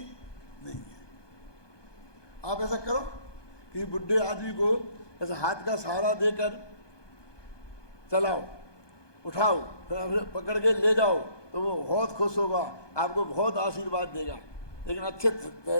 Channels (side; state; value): right; late; 1.2 ms